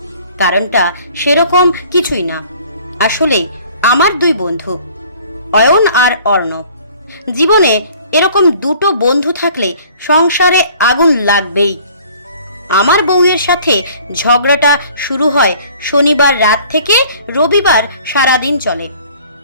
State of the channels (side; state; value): both; inverted; correlation -0.53